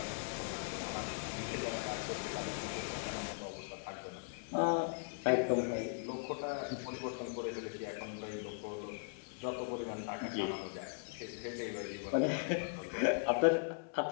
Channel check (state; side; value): silent; right; 52 dB below the other